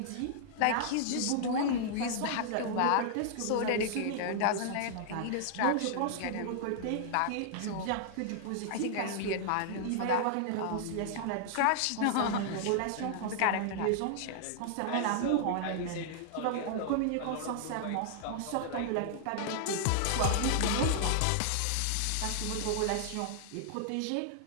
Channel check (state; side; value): different; both; correlation -0.01